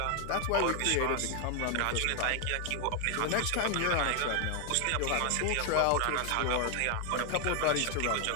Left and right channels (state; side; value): different; both; correlation 0.01